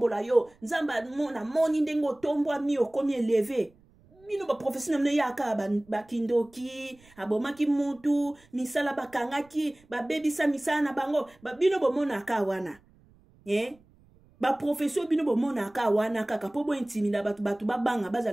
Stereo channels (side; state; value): right; noise; rumble, 29 dB below the sound